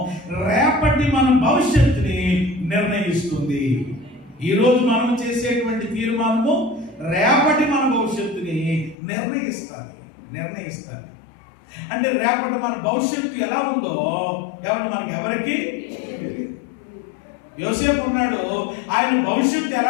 రేపటి మన భవిష్యత్తుని నిర్ణయిస్తుంది. ఈరోజు మనం చేసేటువంటి తీర్మానము రేపటి మన భవిష్యత్తుని నిర్ణయిస్తుంది. అంటే రేపటి మన భవిష్యత్తు ఎలా ఉందో ఎవరికి యోసేపు ఉన్నాడు, ఆయన భవిష్యత్తు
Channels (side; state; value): right; drops out; at 9.0 s